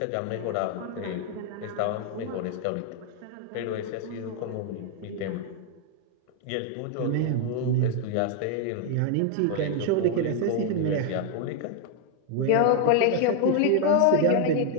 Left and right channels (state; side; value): different; both; correlation 0.00